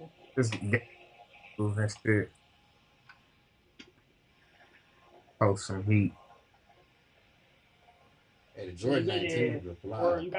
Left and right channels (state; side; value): identical; both; correlation 1.00